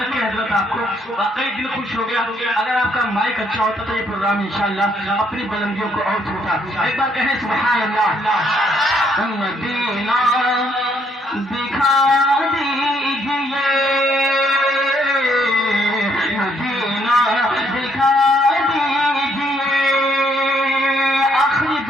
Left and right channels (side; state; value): both; normal; correlation 0.70